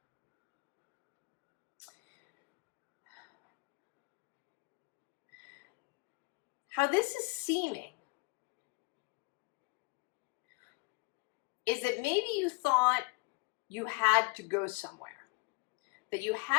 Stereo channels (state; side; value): quieter; right; 28.6 dB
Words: How this is seeming is that maybe you thought you had to go somewhere, that you